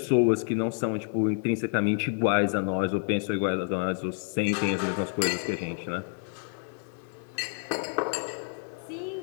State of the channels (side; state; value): right; silent; digital silence